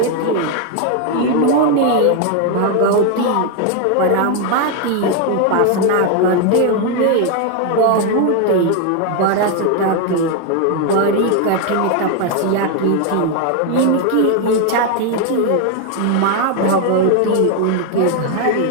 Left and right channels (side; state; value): both; different; correlation 0.01